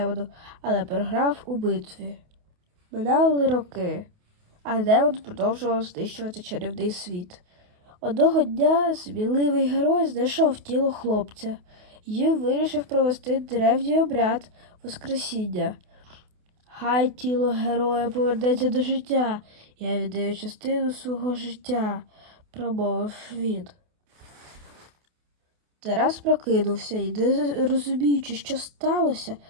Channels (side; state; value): left; late; 28 ms